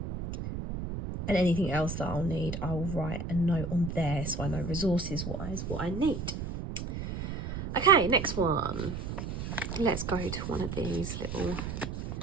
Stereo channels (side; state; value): right; noise; rumble, 5 dB below the sound